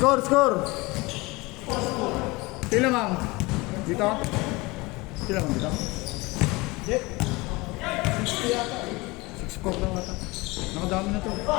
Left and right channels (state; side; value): quieter; right; 23.5 dB